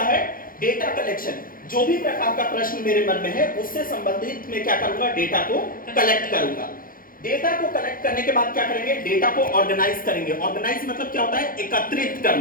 है? Data collection. जो भी प्रकार का प्रश्न मेरे मन में है उससे संबंधित मैं क्या करूंगा? डेटा को कलेक्ट करूंगा। डेटा को कलेक्ट करने के बाद क्या करेंगे? डेटा को ऑर्गेनाइज करेंगे। ऑर्गेनाइज मतलब क्या होता है? एकत्रित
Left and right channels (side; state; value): right; late; 0.41 ms